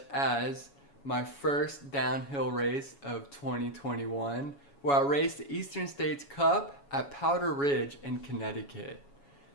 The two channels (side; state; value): right; late; 7.1 ms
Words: as my first downhill race of 2021, where I raced the Eastern States Cup at Powder Ridge in Connecticut,